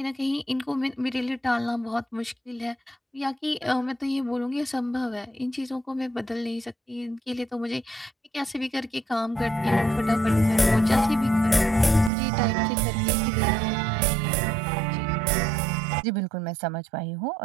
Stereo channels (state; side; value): drops out; left; at 12.1 s